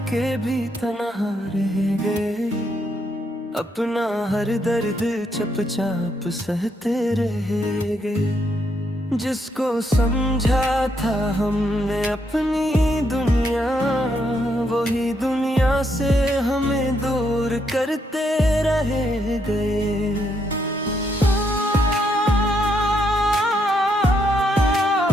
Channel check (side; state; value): both; normal; correlation 0.76